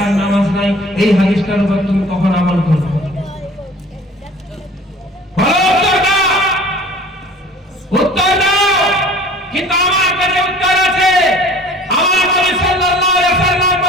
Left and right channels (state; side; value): normal; both; correlation 0.47